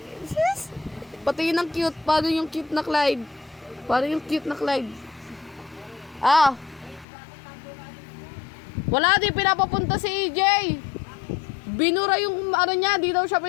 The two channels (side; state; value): right; drops out; at 7.1 s